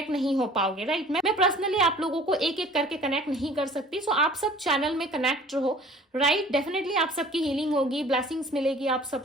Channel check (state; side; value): normal; both; correlation 0.49